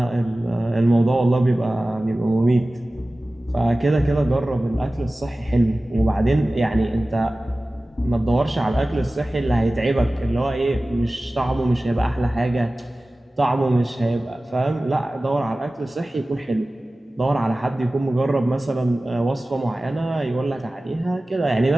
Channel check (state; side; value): normal; both; correlation 0.97